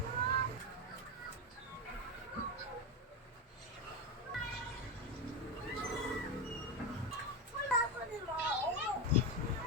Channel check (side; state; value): both; normal; correlation 0.13